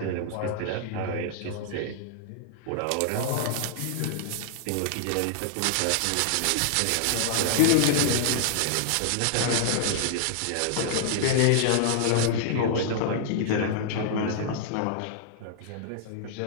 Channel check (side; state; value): both; different; correlation -0.01